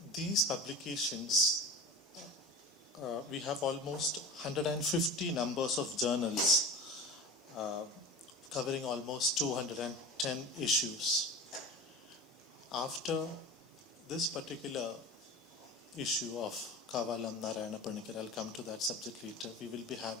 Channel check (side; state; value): both; normal; correlation 0.32